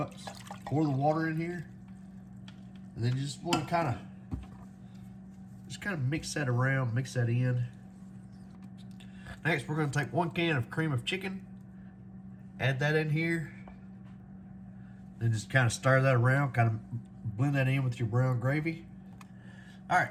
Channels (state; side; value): identical; both; correlation 1.00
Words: Pour the water in here, and then you just want to kind of mix that around, mix that in. Next, we're going to take 1 can of cream of chicken, add that in here, then just kind of stir that around, kind of blend that in with your brown gravy. All